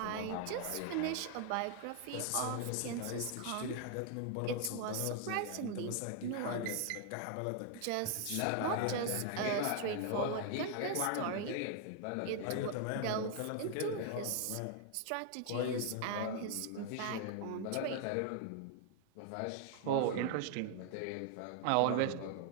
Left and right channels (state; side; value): different; both; correlation 0.00